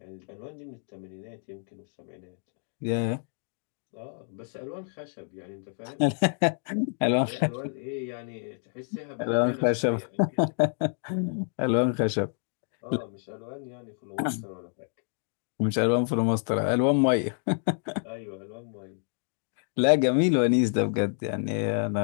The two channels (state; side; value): silent; right; 56 dB below the other